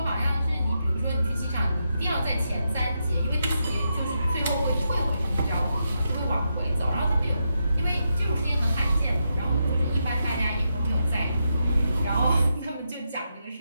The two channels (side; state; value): both; inverted; correlation -0.84